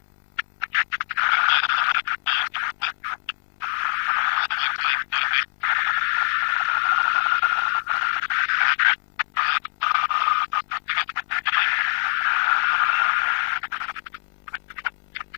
Wembley looking absolutely perfect tonight. A lovely playing surface. I don't know how good it is. The Dutch couldn't put things together that time. Bit of a surprise to see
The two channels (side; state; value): right; silent; digital silence